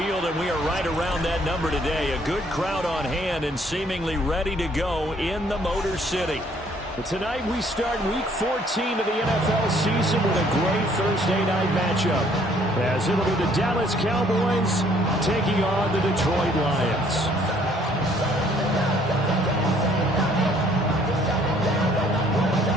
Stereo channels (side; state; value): both; normal; correlation 0.62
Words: and we are right around that number today. A good crowd on hand and seemingly ready to go in the Motor City. Tonight we start Week 14 of the NFL season with a great Thursday night matchup, as it'll be the Dallas Cowboys taking on the Detroit Lions.